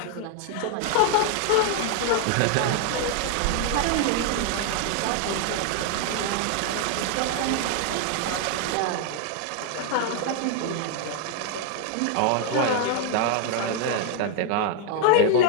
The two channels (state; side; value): different; both; correlation 0.00